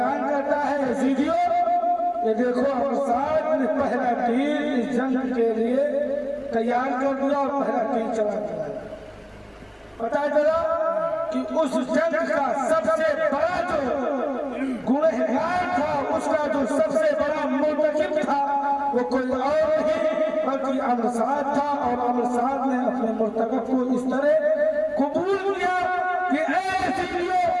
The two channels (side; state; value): both; identical; correlation 1.00